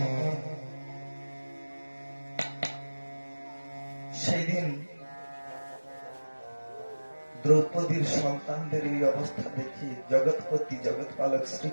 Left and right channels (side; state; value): both; inverted; correlation -1.00